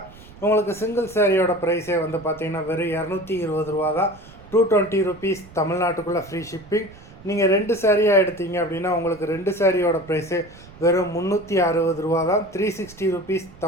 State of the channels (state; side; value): noise; right; rumble, 21 dB below the sound